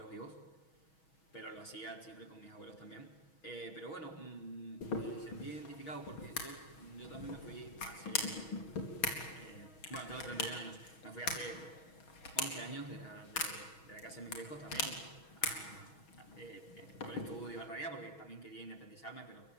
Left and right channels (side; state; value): right; late; 6.3 ms